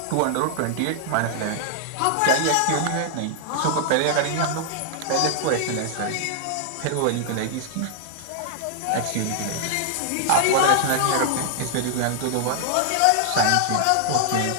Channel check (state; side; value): different; both; correlation -0.01